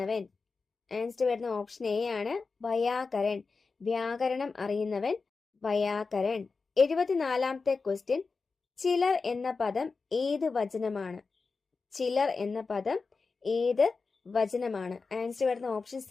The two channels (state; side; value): quieter; right; 4.4 dB